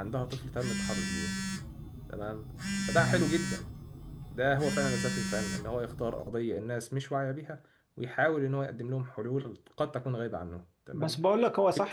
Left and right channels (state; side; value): identical; both; correlation 1.00